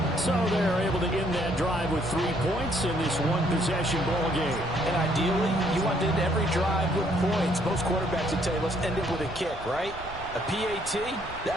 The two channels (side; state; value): right; noise; rumble, 15 dB below the sound